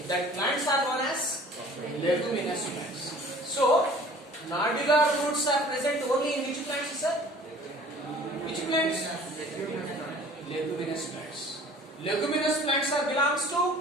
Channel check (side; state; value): both; normal; correlation 0.49